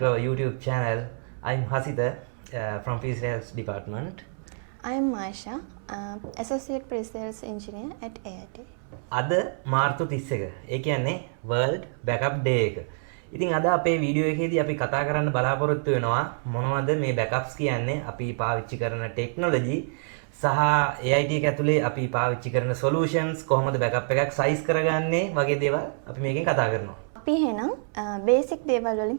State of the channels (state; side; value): silent; left; 60 dB below the other